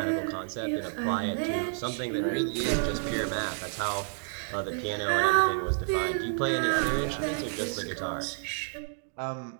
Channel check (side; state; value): left; silent; digital silence